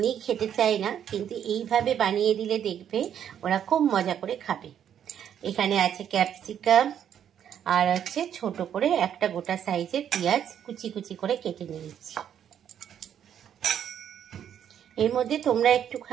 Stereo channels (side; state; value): left; quieter; 9.3 dB